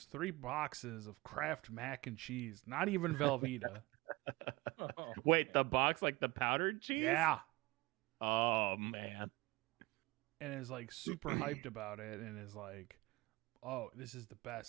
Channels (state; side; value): quieter; left; 22.4 dB